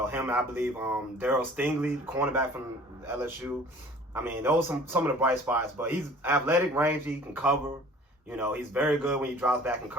I believe, Darryl Stingley, the cornerback from LSU. I mean, those are some of the bright spots. But he's athletic, rangy, he can cover. He's very good when he drops back in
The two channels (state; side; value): normal; both; correlation 0.48